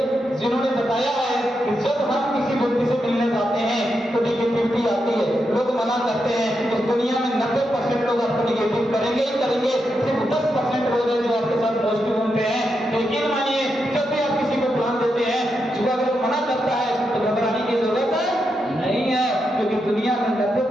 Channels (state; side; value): normal; both; correlation 0.85